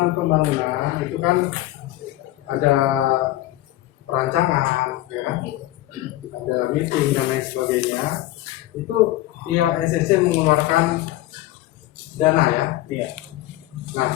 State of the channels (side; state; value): right; quieter; 15.9 dB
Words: itu kan ada perancangan, ya, kan? Ada meeting dan lain sebagainya. Itu pihak SSC mengeluarkan dana ya. Iya. Nah,